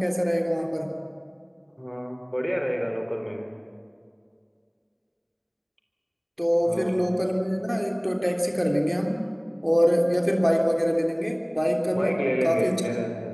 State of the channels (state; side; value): identical; both; correlation 1.00